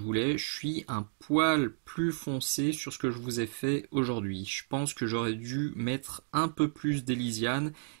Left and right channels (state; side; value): silent; left; digital silence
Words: voulais, je suis un poil plus foncé sur ce que je vous ai fait aujourd'hui. Je pense que j'aurais dû mettre un peu plus d'Elysiane